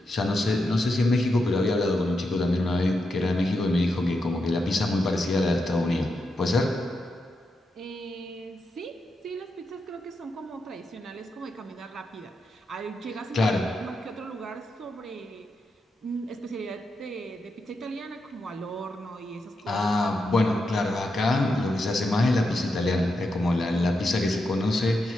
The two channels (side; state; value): both; normal; correlation 0.85